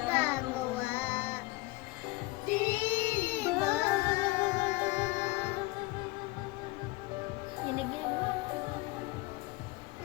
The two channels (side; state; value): right; quieter; 21.5 dB